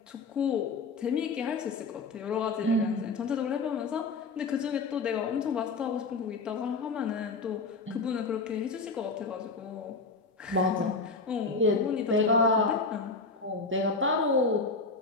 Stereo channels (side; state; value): right; quieter; 3.9 dB